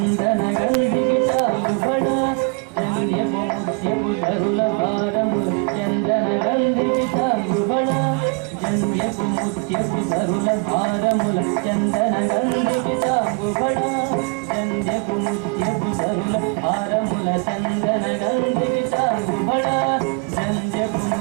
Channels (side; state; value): left; quieter; 32.7 dB